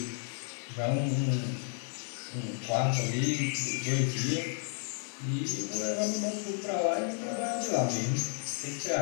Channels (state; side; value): silent; right; 56 dB below the other